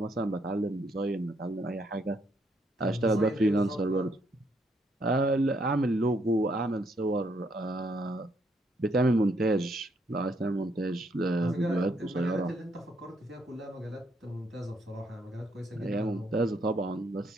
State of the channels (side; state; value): both; normal; correlation 0.73